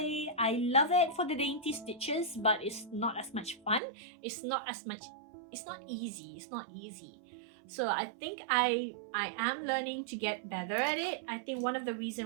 I love it for the dainty stitches, but it's not as much fun. It's not easy. So I think I am learning to get better at it. I think one of the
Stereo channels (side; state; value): left; drops out; at 3.8 s